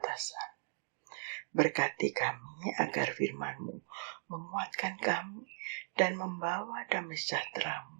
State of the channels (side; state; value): left; silent; digital silence